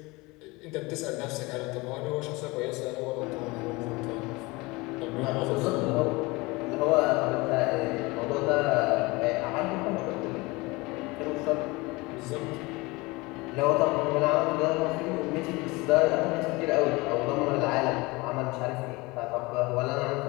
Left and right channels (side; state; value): right; quieter; 23.7 dB